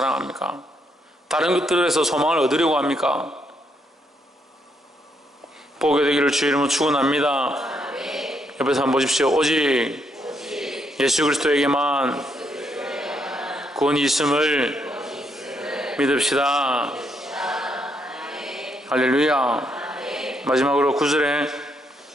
다른 것들에서 소망을 얻으려고 합니까? 보게 되기를 주의 이름으로 축원합니다. 옆에서 한번 보십시오. 오직 예수 그리스도에게만 구원이 있음을 믿읍시다. 할렐루야. 마지막으로 9절에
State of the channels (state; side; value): normal; both; correlation 0.76